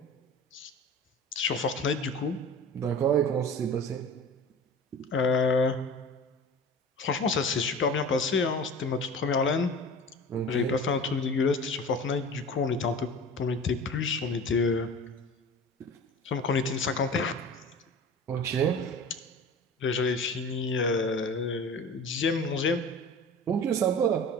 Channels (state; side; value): normal; both; correlation 0.37